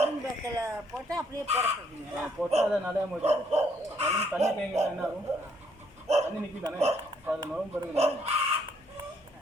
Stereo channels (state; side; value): normal; both; correlation 0.69